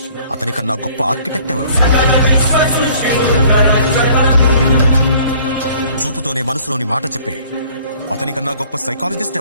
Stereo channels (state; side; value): inverted; both; correlation -0.54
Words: అతనికన్నా గొప్ప ఆర్కిటెక్ట్ ఎవరు? చూపుతోనే మనసులోని మాట చెప్పే అతనికన్నా గొప్ప సైకాలజిస్ట్